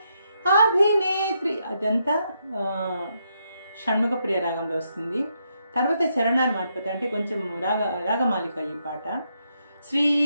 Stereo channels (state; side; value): inverted; both; correlation -0.79